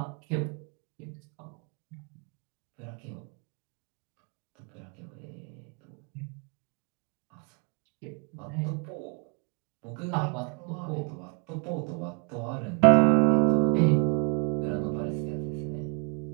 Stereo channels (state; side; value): quieter; left; 37.3 dB